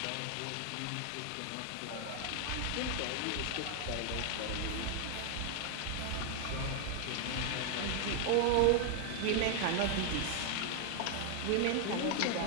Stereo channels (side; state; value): both; different; correlation 0.00